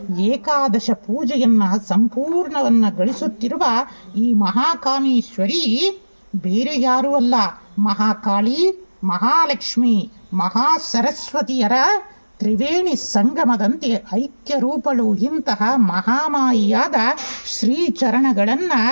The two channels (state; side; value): inverted; both; correlation -1.00